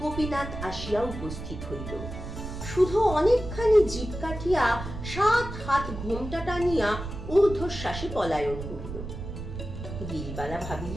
আসিয়া উপস্থিত হইল। শুধু অনেকখানি জিভ কাটিয়া 7 হাত ঘোমটা টানিয়া ঊর্ধ্বশ্বাসে পলায়ন করিল। গিরিবালা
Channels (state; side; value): noise; right; rumble, 8 dB below the sound